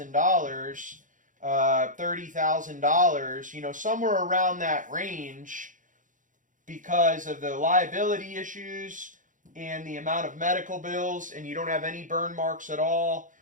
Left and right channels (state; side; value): late; left; 0.38 ms